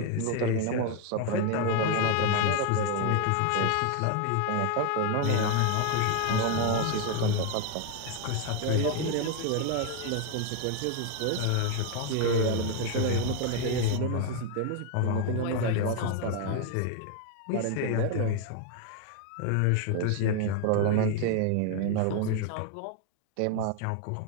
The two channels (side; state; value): both; different; correlation 0.01